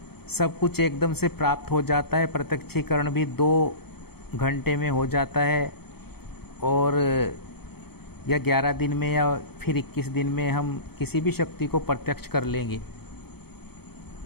सब कुछ एकदम से प्राप्त हो जाता है, प्रत्यक्षीकरण भी 2 घंटे में हो जाता है, और या 11 दिन में या फिर 21 दिन में हम किसी भी शक्ति को प्रत्यक्ष कर लेंगे।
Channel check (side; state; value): right; late; 0.96 ms